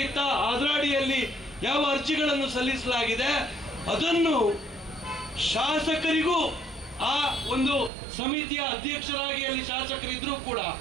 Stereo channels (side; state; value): left; drops out; at 7.9 s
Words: ಇತ್ತ ಅದರ ಅಡಿಯಲ್ಲಿ ಯಾವ ಅರ್ಜಿಗಳನ್ನು ಸಲ್ಲಿಸಲಾಗಿದೆ, ಅದನ್ನು ಶಾಸಕರಿಗೂ ಆ ಒಂದು ಸಮಿತಿಯ ಅಧ್ಯಕ್ಷರಾಗಿ ಅಲ್ಲಿ ಶಾಸಕರಿದ್ರೂ ಕೂಡ